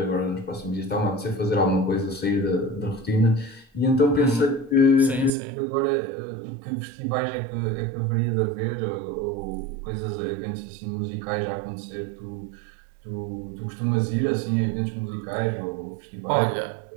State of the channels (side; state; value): left; drops out; at 5.3 s